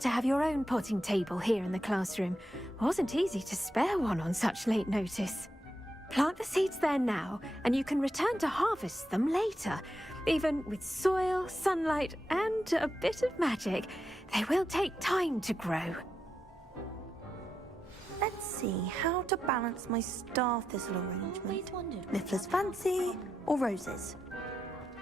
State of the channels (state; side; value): normal; both; correlation 0.85